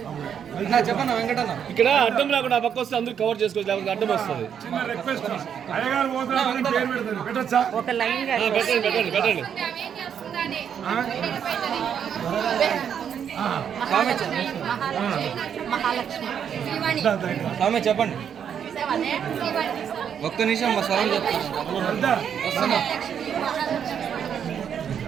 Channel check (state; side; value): quieter; left; 8.2 dB